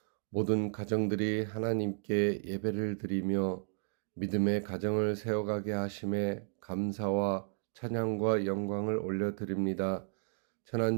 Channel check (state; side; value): silent; left; digital silence